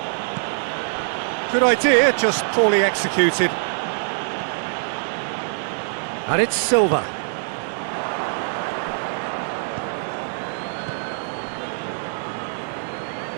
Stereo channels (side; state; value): left; silent; digital silence